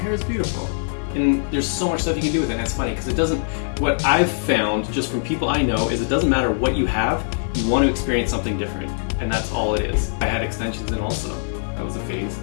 is beautiful. And there's so much stuff you can do with it, and it's funny because it doesn't, what I've found just from people I know is it doesn't matter what you have, you want to experience something different, and that's all it is. I had extensions in also, that was a phase.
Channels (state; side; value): silent; right; digital silence